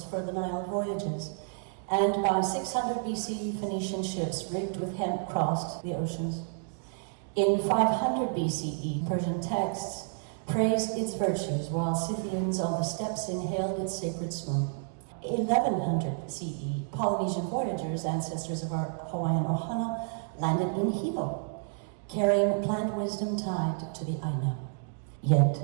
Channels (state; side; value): silent; left; 58 dB below the other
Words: for the Nile voyages, and by 600 BCE, Phoenician ships rigged with hemp crossed the oceans. In 500 BCE, Persian texts praised its virtues, while Scythians on the steppes inhaled its sacred smoke. 1100 CE, Polynesian voyagers, ancestors of our Hawaiian ohana, landed in Hilo, carrying plant wisdom tied to the Aina. Yet